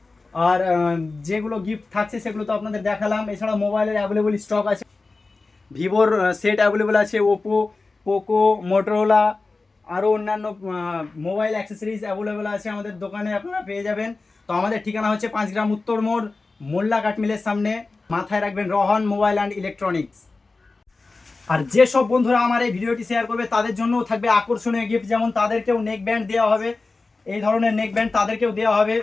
আর যেগুলো গিফট থাকছে সেগুলো তো আপনাদের দেখালাম। এছাড়া মোবাইলের অ্যাভেলেবল স্টক আছে, ভিভোর সেট অ্যাভেলেবল আছে, ওপো, পোকো, মোটরোলা, আরও অন্যান্য মোবাইল অ্যাক্সেসরিজ অ্যাভেলেবল আছে আমাদের দোকানে, আপনারা পেয়ে যাবেন। তো আমাদের ঠিকানা হচ্ছে 5 গ্রাম উত্তর মোড়, মোল্লা কাঠমিলের সামনে। মাথায় রাখবেন রোহান মোবাইল অ্যান্ড ইলেকট্রনিক্স। আর যেসব বন্ধুরা আমার এই ভিডিওটি শেয়ার করবে তাদের জন্যও থাকবে আকর্ষণীয় গিফট, যেমন তাদেরকেও নেক ব্যান্ড দেওয়া হবে, এই ধরনের নেক ব্যান্ড তাদেরকেও দেওয়া হবে,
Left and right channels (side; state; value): right; quieter; 3.7 dB